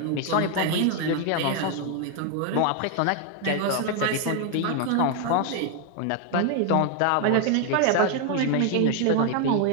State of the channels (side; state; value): both; different; correlation 0.01